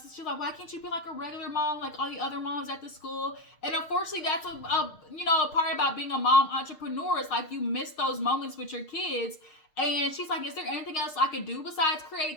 she's like, "Why can't you be like a regular mom like all the other moms at the school?" And unfortunately, that's a part about being a mom entrepreneur. It's like, you miss those moments with your kids. And she's like, "Is there anything else I could do besides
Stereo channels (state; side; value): late; right; 6.5 ms